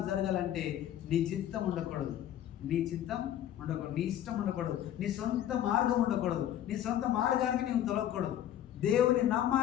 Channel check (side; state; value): right; quieter; 11.3 dB